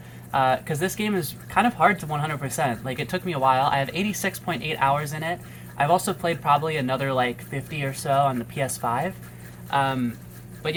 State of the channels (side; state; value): both; identical; correlation 1.00